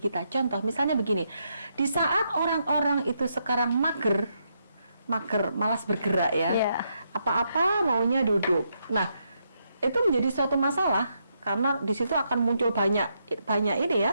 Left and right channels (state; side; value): inverted; both; correlation -0.79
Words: Contoh, misalnya begini, di saat orang-orang itu sekarang mager, malas bergerak ya, apa-apa maunya duduk. Nah, itu menjadi suatu masalah karena di situ akan muncul banyak ini